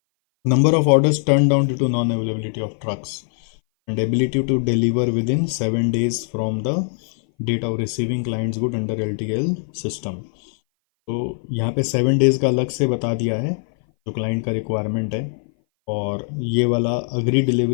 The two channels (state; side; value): silent; right; 58 dB below the other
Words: Number of orders turn down due to non availability of trucks and ability to deliver within 7 days from the date of receiving clients good under LTL system. तो यहाँ पे 7 days का अलग से बता दिया है जो क्लाइंट का रिक्वायरमेंट है, और ये वाला अग्री